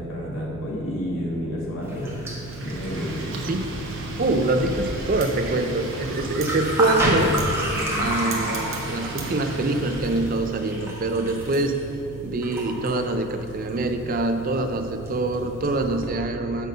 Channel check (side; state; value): right; noise; hum, 16 dB below the sound